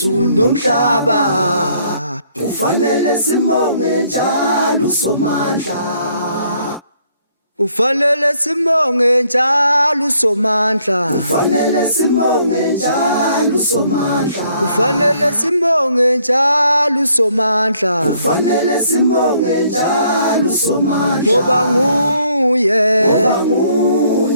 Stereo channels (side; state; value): both; inverted; correlation -0.67